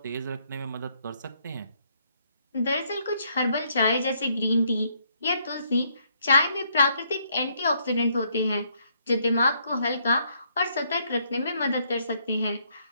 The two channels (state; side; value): inverted; both; correlation -0.71